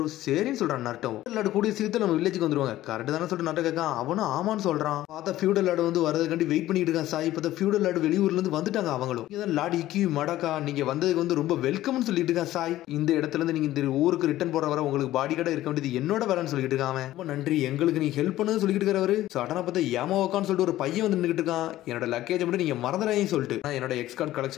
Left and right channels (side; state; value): right; quieter; 14.8 dB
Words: சரின்னு சொல்றான் நரட்டோ. லாட் கூடிய சீக்கிரத்துல நம்ம வில்லேஜுக்கு வந்துருவாங்க கரெக்ட் தானே சொல்லிட்டு நரட்டோ கேட்கான். அவனும் ஆமான்னு சொல்றான். பார்த்தா ஃபியூடல் லாட் வந்து வரதுக்காண்டி வெயிட் பண்ணிட்டு இருக்கான் சாய். இப்ப ஃபியூடல் லாட் வெளியூர்ல இருந்து வந்துட்டாங்க அவங்களும். இதான் லாட் இக்கி மடக்கா, நீங்க வந்ததுக்கு வந்து ரொம்ப வெல்கம்னு சொல்லிட்டு இருக்கான் சாய். இந்த இடத்துல இருந்து நீங்க இந்த ஊருக்கு ரிட்டர்ன் போற வர உங்களுக்கு பாடி கார்டா இருக்க வேண்டியது என்னோட வேலைன்னு சொல்லிட்டு இருக்கான். ரொம்ப நன்றி, எங்களுக்கு நீ ஹெல்ப் பண்ணு சொல்லிட்டு இருக்காரு. சடனா பார்த்தா யாமாவோக்கான்னு சொல்லிட்டு ஒரு பையன் வந்து நின்னுட்டு இருக்கான். என்னோட லக்கேஜ் மட்டும் நீங்க மறந்துடாதீங்கன்னு சொல்லிட்டு, என்னோட எக்ஸ் கார்டு